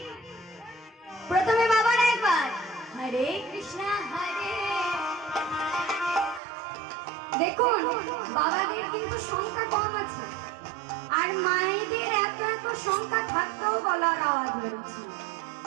প্রথমে বাবার একবার হরে কৃষ্ণ হরে। দেখুন বাবাদের কিন্তু সংখ্যা কম আছে, আর মায়েদের এত এত সংখ্যা থাকতেও গলার আওয়াজ বেরোচ্ছে।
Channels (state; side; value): drops out; left; at 6.4 s